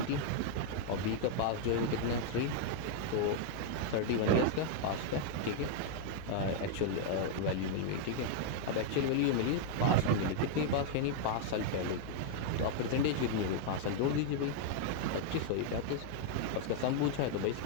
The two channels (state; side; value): different; both; correlation 0.00